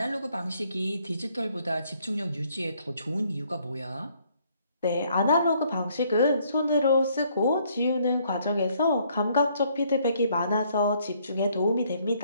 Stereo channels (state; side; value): inverted; both; correlation -0.66